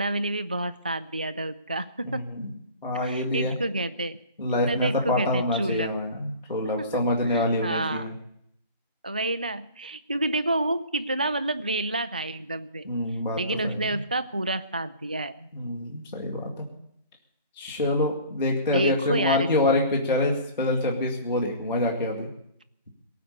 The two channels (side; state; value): both; inverted; correlation -0.45